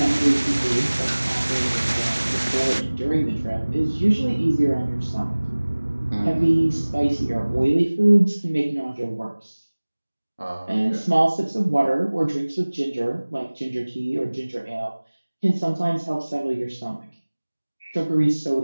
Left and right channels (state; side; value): inverted; both; correlation -1.00